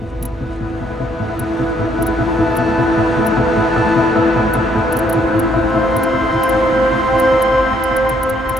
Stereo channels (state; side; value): normal; both; correlation 0.70